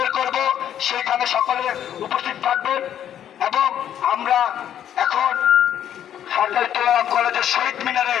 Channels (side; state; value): right; quieter; 10.2 dB